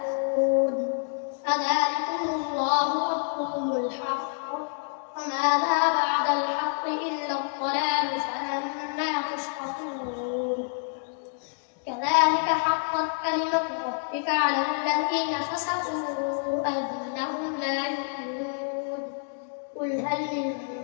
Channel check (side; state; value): right; silent; digital silence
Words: فذلكم الله ربكم الحق وماذا بعد الحق إلا الضلال فأنى تسقطون كذلك حقت كلمة ربك على الذين فسقوا أنهم لا يؤمنون قل هل